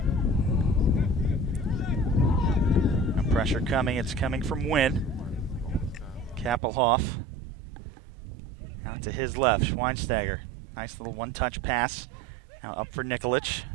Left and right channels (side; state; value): left; drops out; at 6.6 s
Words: Pressure coming, it's coming from Wynn. Kappelhoff out to his left, Schweinsteiger. Nice little one-touch pass. Now up for Nikolic